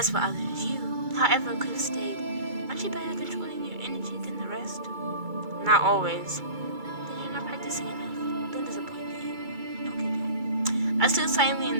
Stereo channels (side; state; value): left; late; 2.3 ms